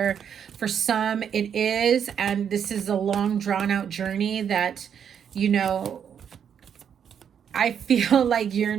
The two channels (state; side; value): quieter; left; 8.1 dB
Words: For some, it is. And this is a long, drawn out journey that, you know, I feel like you're